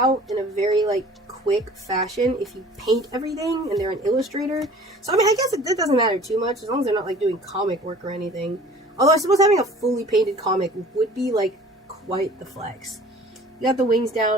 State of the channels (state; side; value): normal; both; correlation 0.48